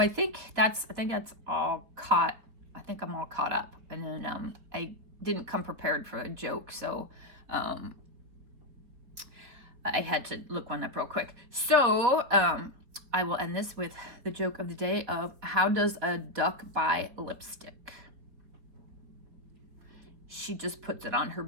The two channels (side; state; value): left; late; 4.2 ms